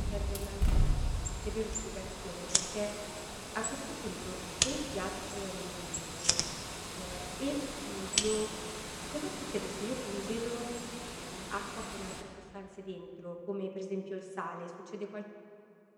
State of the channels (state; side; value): identical; both; correlation 1.00